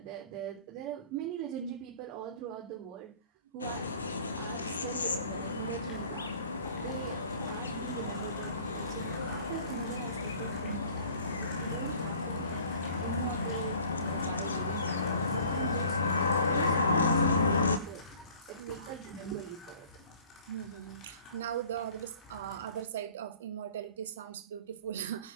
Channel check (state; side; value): inverted; both; correlation -0.50